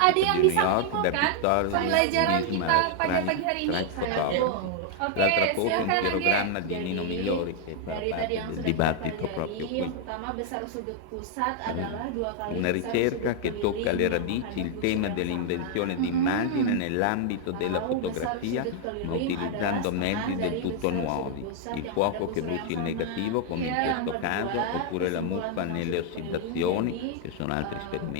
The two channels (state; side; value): different; both; correlation 0.00